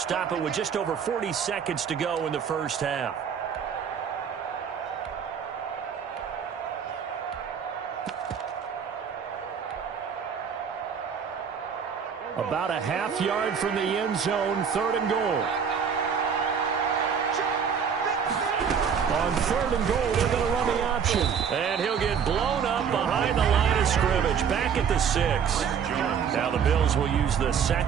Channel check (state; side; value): quieter; left; 7.2 dB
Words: it with just over 40 seconds to go in the first half. About a half yard from the end zone, 3rd and goal. On 3rd and goal, they're going to run the option. And he'll get blown up behind the line of scrimmage, back at the 6. Now the Bills will use the